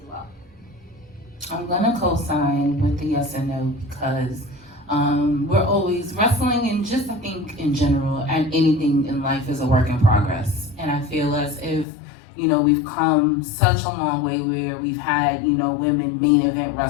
well. I'm gonna co-sign with the yes and no, because we're always wrestling, and just I think in general, and anything in life is a work in progress. And I feel as if, we've come such a long way where we've had, women main event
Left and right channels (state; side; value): drops out; right; at 11.9 s